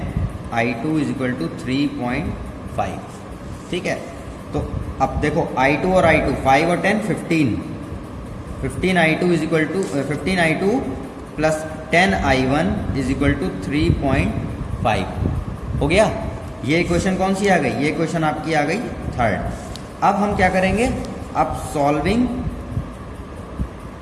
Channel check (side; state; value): both; identical; correlation 1.00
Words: is equal to 3.5। ठीक है, तो अब देखो i2 और i2, 5 और 10 15i2 is equal to 15i2 plus 10i1 is equal to 3.5 हो गया। ये इक्वेशन कौन सी आ गई, ये इक्वेशन आपकी आ गई थर्ड। अब हम क्या करेंगे, अब